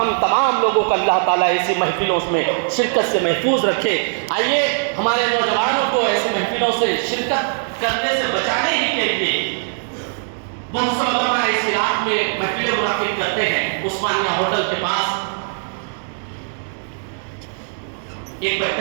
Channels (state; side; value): silent; left; digital silence